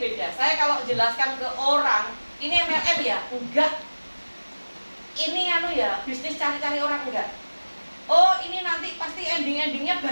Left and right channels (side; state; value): both; inverted; correlation -1.00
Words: Saya kalau jelaskan ke orang, ini MLM ya? Enggak. Ini ya, bisnis cari-cari orang enggak. Oh, ini nanti pasti ending-endingnya